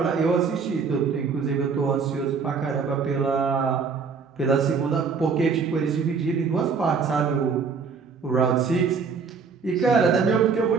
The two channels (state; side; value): quieter; left; 5.4 dB